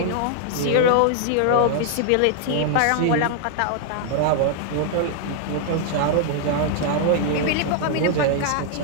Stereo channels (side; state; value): both; different; correlation -0.01